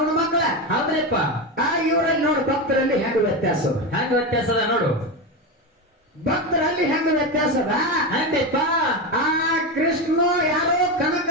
ಮಕ್ಕಳ. ಹೌದ್ರಿಪ್ಪ. ಇವರಲ್ಲಿ ನೋಡು ಭಕ್ತರಲ್ಲಿ ಹೆಂಗ ವ್ಯತ್ಯಾಸದ ನೋಡು. ಭಕ್ತರಲ್ಲಿ ಹೆಂಗ ವ್ಯತ್ಯಾಸದ ಹಂಗಪ್ಪ. ಕೃಷ್ಣ ಯಾರೋ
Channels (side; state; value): both; normal; correlation 0.16